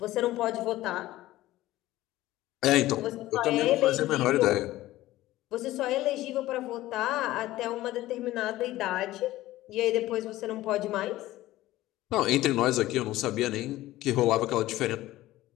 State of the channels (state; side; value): quieter; right; 16.2 dB